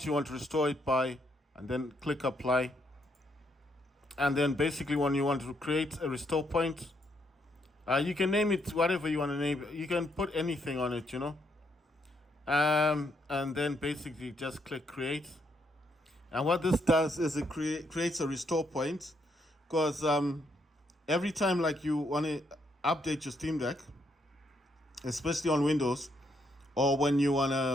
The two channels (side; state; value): both; normal; correlation 0.75